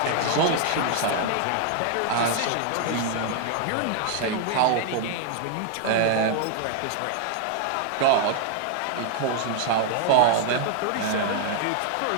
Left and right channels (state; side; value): different; both; correlation 0.00